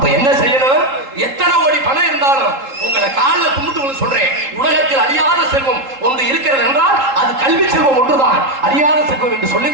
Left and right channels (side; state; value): left; late; 3.8 ms